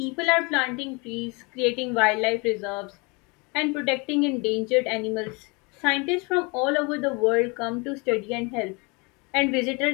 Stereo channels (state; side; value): quieter; right; 29.2 dB